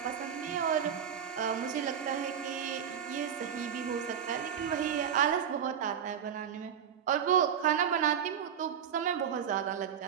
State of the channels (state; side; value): quieter; left; 8.3 dB